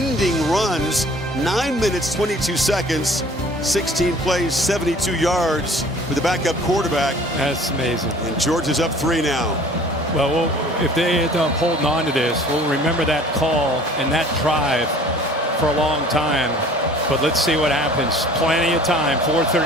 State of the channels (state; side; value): normal; both; correlation 0.50